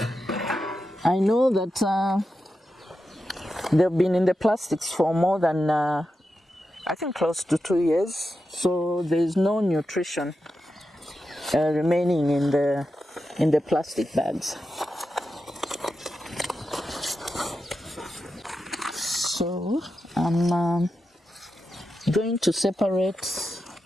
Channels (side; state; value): both; normal; correlation 0.89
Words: I know that they've been in the plastics for more than I think close to 2 years, so there's no nutrition remaining in the plastic bags. So I'm going to separate